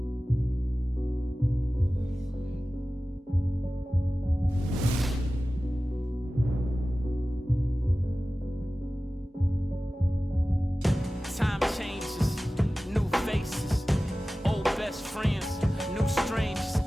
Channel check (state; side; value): normal; both; correlation 0.96